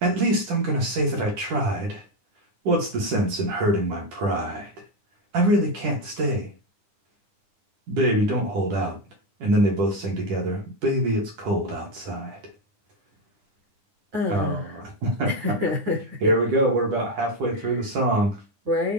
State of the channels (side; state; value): left; late; 10 ms